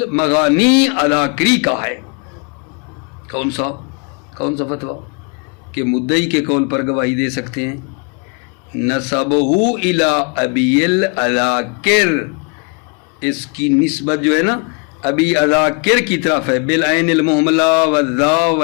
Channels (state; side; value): quieter; right; 34.6 dB